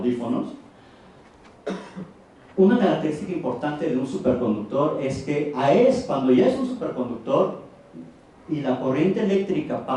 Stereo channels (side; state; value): both; identical; correlation 1.00